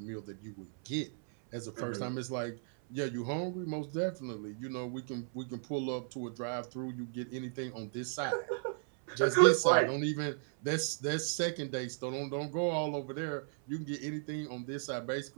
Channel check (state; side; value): silent; left; 54 dB below the other